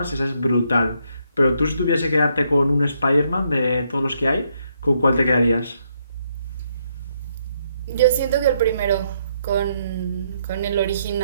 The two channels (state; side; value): inverted; both; correlation -0.74